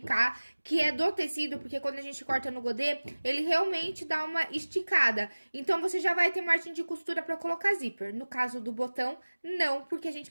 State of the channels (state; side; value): inverted; both; correlation -1.00